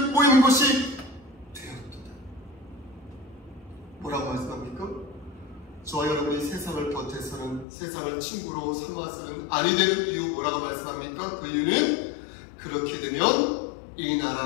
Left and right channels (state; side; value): drops out; right; at 7.7 s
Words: 모이는 곳이 되었도다. 뭐라고 말씀합니까? 저와 여러분이 세상을 버텨서는, 세상을 친구로 삼아서는 아니 되는 이유 뭐라고 말씀합니까? 그 이유는 그렇게 되면 이